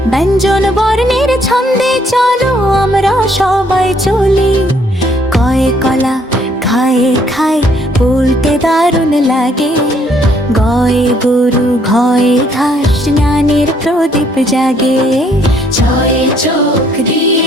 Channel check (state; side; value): normal; both; correlation 0.67